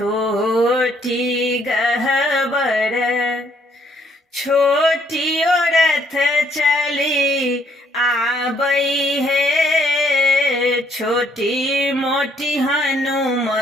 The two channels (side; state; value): both; normal; correlation 0.67